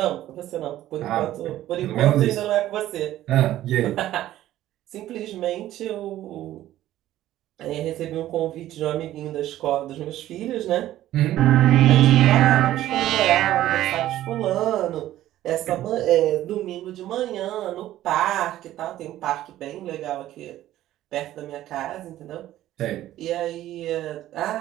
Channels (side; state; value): left; quieter; 13.8 dB